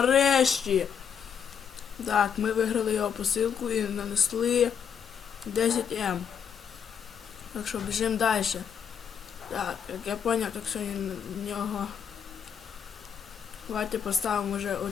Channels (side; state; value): right; quieter; 7.6 dB